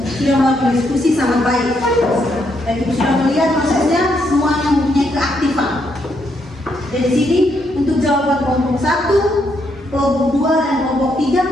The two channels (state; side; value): normal; both; correlation 0.76